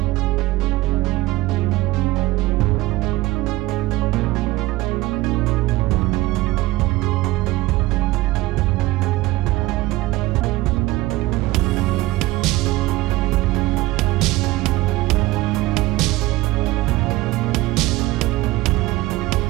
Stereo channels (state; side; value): quieter; left; 18.7 dB